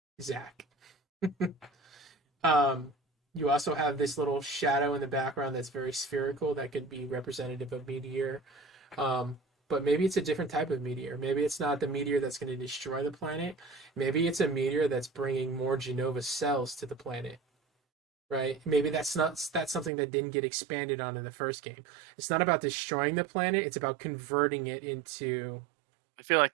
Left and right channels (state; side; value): drops out; left; at 19.9 s